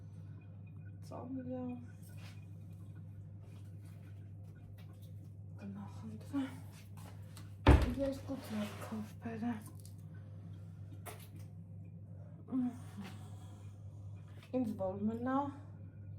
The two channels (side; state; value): both; identical; correlation 1.00